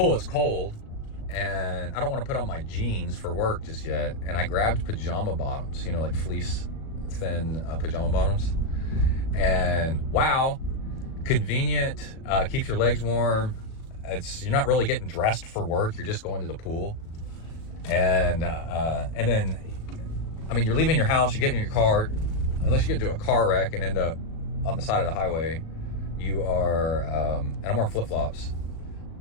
it's cold, and I don't want to put on my jeans for work just yet. And I grabbed pajama bottoms, you know, like fleece thin pajama bottoms. And wow, convenient, keeps your legs warm. You're not really getting dressed for work. You're just going to the pool. And then, I mean, you're leaving your house, you get in your car, unless you get into a car wreck and end up on the side of the highway, you are, and I'm wearing flip-flops,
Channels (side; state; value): right; late; 37 ms